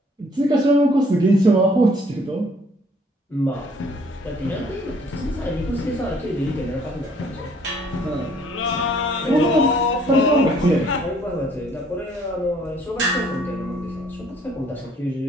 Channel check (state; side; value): normal; both; correlation 0.60